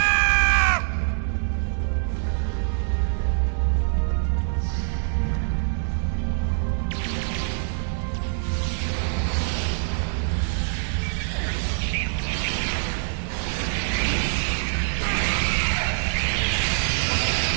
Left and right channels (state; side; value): silent; left; digital silence